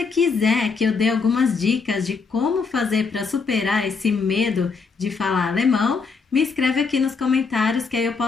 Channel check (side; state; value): right; quieter; 5.0 dB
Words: quiser que eu dê algumas dicas de como fazer para superar esse medo de falar alemão, me escreve aqui nos comentários que aí eu